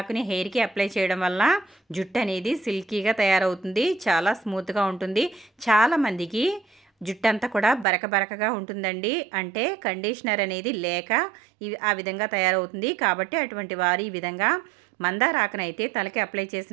హెయిర్కి అప్లై చేయడం వల్ల జుట్టు అనేది సిల్కీగా తయారవుతుంది. చాలా స్మూత్గా ఉంటుంది. చాలామందికి జుట్టు అంతా కూడా బరక బరకగా ఉంటుందండి. అంటే కండిషనర్ అనేది లేక ఆ విధంగా తయారవుతుంది. కాబట్టి అటువంటి వారు ఈ విధంగా మందారాకునైతే తలకి అప్లై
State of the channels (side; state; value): left; drops out; at 7.9 s